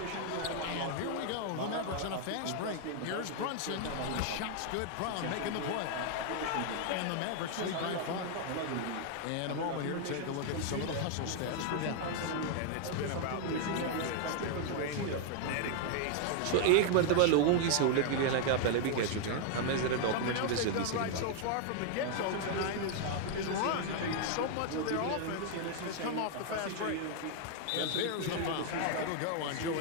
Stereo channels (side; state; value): both; different; correlation 0.00